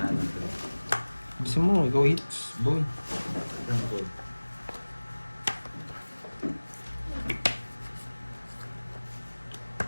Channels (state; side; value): inverted; both; correlation -1.00